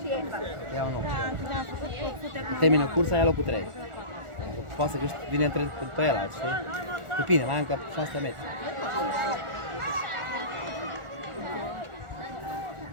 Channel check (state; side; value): late; left; 1.4 ms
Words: e Ia un loc. Termină cursa, ia locul 3. Poate să vine pe el, știi? Cu bine, mai încă 600 metri.